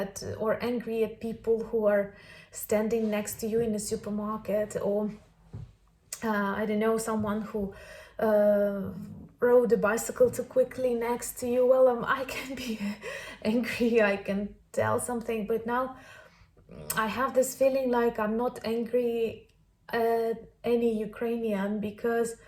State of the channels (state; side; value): identical; both; correlation 1.00